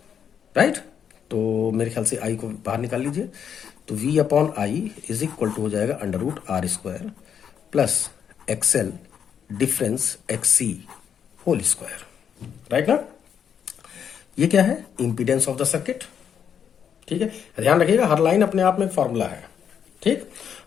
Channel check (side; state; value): right; quieter; 8.0 dB